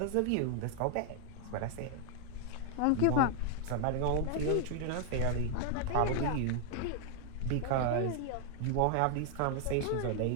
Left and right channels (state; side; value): different; both; correlation 0.00